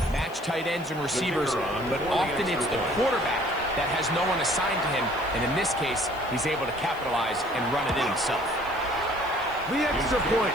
match tight ends and receivers, but often it's the quarterback that has no one assigned to him, and in this case, he's able to capitalize and run it in himself. The extra point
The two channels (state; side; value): noise; left; hiss, 24 dB below the sound